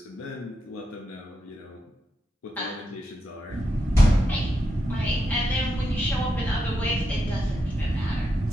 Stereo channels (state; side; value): normal; both; correlation 0.85